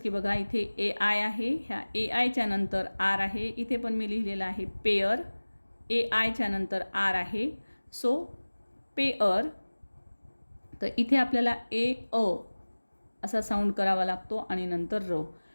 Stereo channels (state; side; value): inverted; both; correlation -1.00